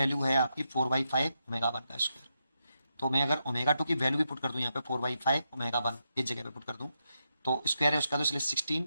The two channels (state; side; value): inverted; both; correlation -0.84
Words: है आपकी 4/5 ओमेगा 1 का स्क्वायर, तो मैं अगर ओमेगा 2 की वैल्यू भी पुट कर दूँ यहाँ पे 4/5 ओमेगा 1 इस जगह पे पुट कर दूँ तो स्क्वायर है उसका, तो इसलिए